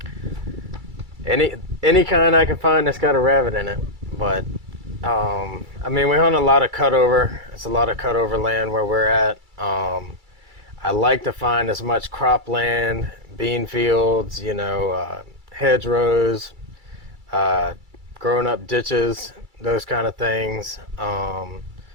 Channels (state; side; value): late; left; 2.3 ms